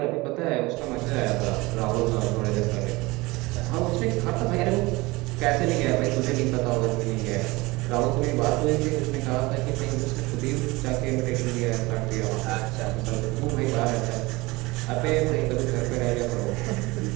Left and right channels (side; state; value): left; quieter; 22.4 dB